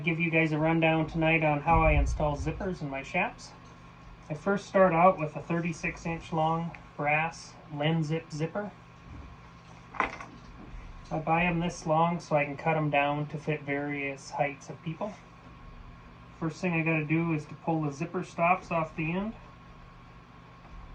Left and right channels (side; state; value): both; identical; correlation 1.00